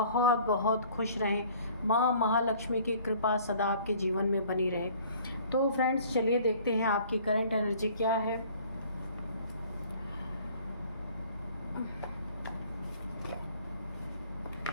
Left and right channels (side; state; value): both; inverted; correlation -0.53